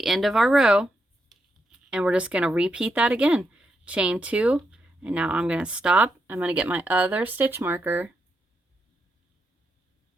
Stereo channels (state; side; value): normal; both; correlation 0.82